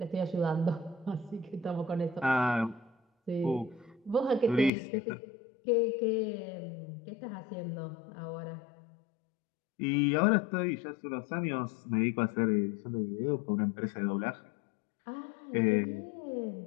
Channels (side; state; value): right; drops out; at 4.7 s